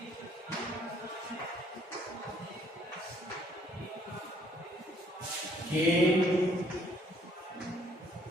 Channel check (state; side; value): normal; both; correlation 0.63